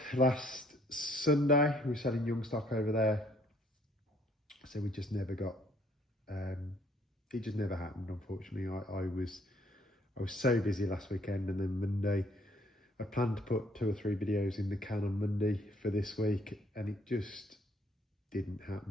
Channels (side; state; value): both; normal; correlation 0.64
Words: last Sunday. We were selling young stock over there, so we just never got it just never happened, unfortunately. I was so busy last weekend, and then Monday I planned to put 2 or 3 videos in the can on Monday for this week, and it just didn't